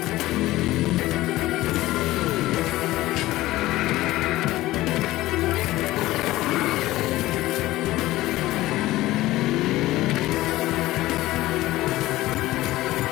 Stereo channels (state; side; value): quieter; right; 17.1 dB